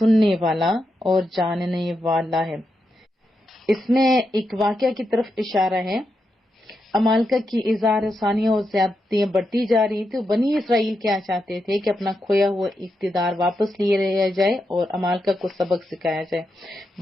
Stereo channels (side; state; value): both; normal; correlation 0.85